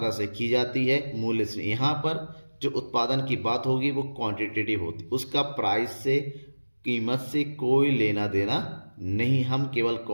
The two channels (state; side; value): inverted; both; correlation -1.00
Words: से की जाती है, मूल्य से। यहाँ पर जो उत्पादन की बात होगी वो क्वांटिटेटिव होती है, उसका प्राइस से, कीमत से कोई लेना देना नहीं। हम केवल